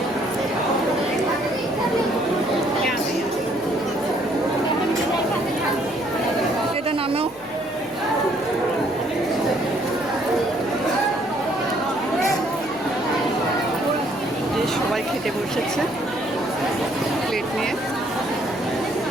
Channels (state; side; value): noise; left; hum, 26 dB below the sound